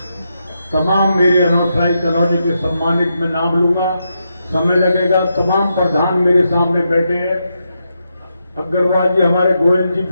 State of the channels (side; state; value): both; inverted; correlation -0.84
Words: तमाम मेरे अनौठाई कॉलोनी के सम्मानित में नाम लूंगा, समय लगेगा। तमाम प्रधान मेरे सामने बैठे हैं, अग्रवाल जी हमारे गोयल जी